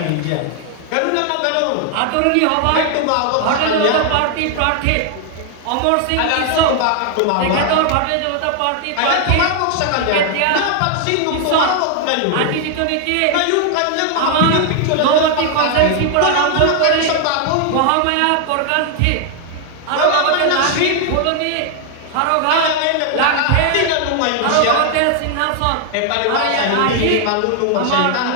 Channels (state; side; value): different; both; correlation 0.00